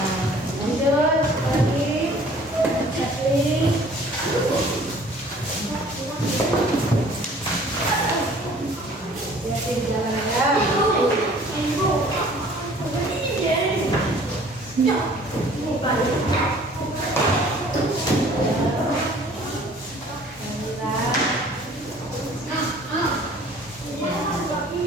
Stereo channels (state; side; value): normal; both; correlation 0.52